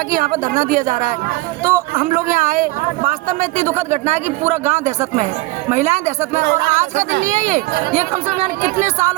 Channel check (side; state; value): left; quieter; 20.6 dB